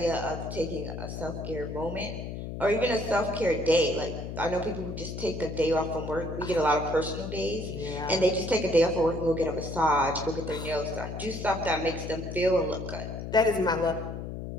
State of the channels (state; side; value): noise; left; hum, 7 dB below the sound